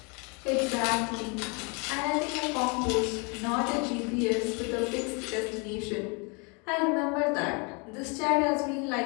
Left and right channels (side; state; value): right; quieter; 32.8 dB